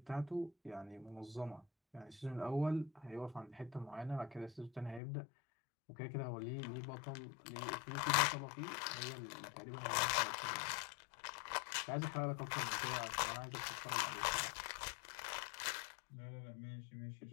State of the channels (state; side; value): drops out; right; at 5.0 s